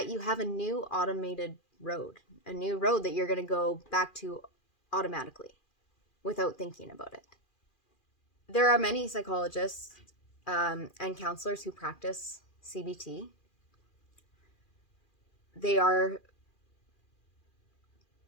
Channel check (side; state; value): right; late; 2.4 ms